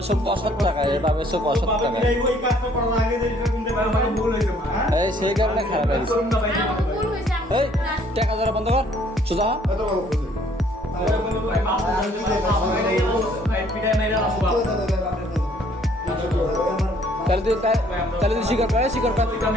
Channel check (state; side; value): normal; both; correlation 0.61